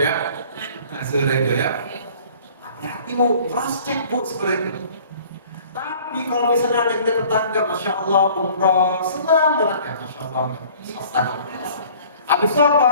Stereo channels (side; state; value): both; inverted; correlation -0.51